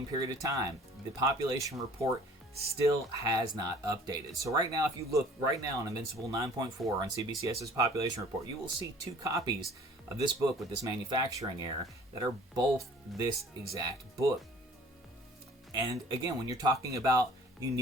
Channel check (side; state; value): both; normal; correlation 0.51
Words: period of time. The population report still has not updated. So right now, if you look right now on Invincible 9.4 on CBCS's population report, you will see 2 copies of this book with this manufacturing error that are both this exact book. And again, when you're talking about